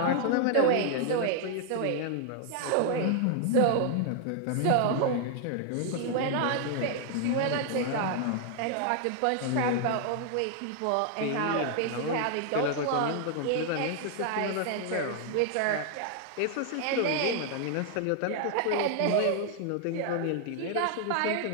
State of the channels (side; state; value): both; different; correlation 0.00